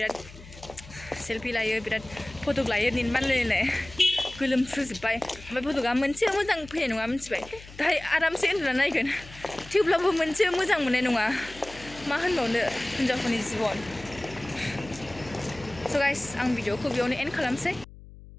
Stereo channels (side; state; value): left; noise; hum, 18 dB below the sound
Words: सेल्फि लायो बिराद फटक लायो निनबानलायनाय गोलोमफ्रुजोब्बाय ओमफ्राय फटका मोनसे मोजां फैनाय नङा मिथिबाय दाहाय आरामसे उन्दुना नायगोन थेवब्लाबो मोनसे मोजां मोननाय नङा मा होनबावनो हिन्जावफोरनि जिबन स' गाइस आं भिडिअखौ बेयावनो एन्ड खालामसै